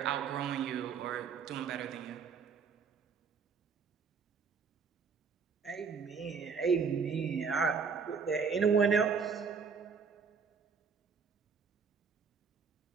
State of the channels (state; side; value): quieter; left; 5.8 dB